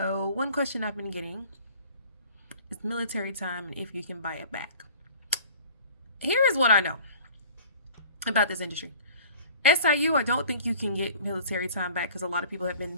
question I've been getting is military time and if you can buy it back. Here is what I know about this industry. SIU, I don't think you can get military time back because a lot of people have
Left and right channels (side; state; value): both; inverted; correlation -0.45